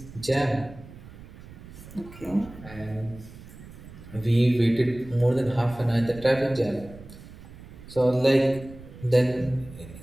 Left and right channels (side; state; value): right; noise; rumble, 17 dB below the sound